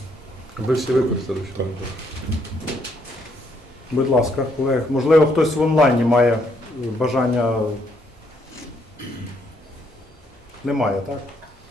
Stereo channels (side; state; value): both; normal; correlation 0.71